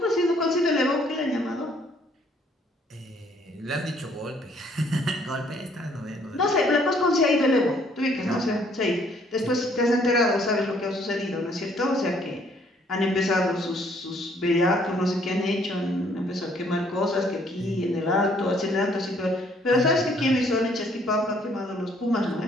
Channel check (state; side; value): normal; both; correlation 0.64